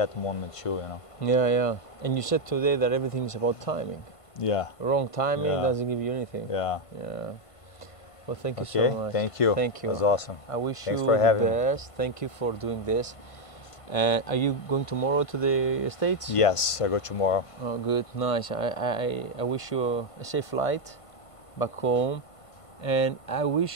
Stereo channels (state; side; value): late; right; 1.5 ms